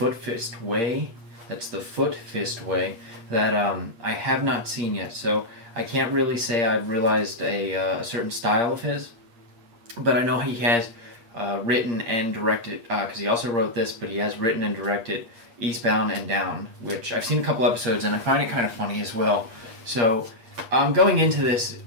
Fist Way. That's The Foot Fist Way that I have not seen yet, so I can't really say I've realized a certain style of his, but I know he has written and directed, because he also wrote this, but he has written and directed Eastbound and Down, which I've seen a couple episodes and I find it kind of funny as well. So going into this,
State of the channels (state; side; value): late; left; 8.6 ms